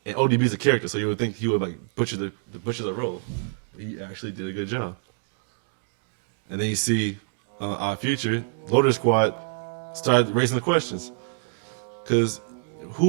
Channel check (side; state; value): left; silent; 61 dB below the other